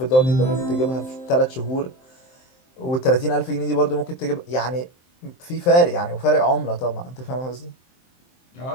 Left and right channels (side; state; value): right; late; 23 ms